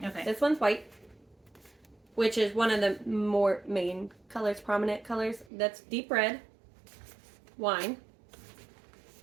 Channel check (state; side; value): drops out; left; at 5.5 s